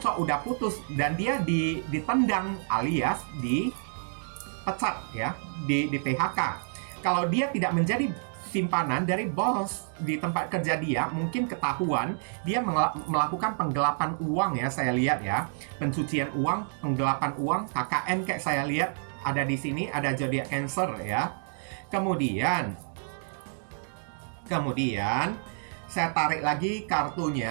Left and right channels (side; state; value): left; silent; digital silence